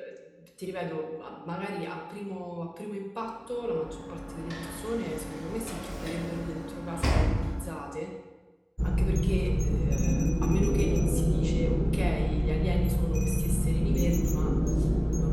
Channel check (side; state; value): both; identical; correlation 1.00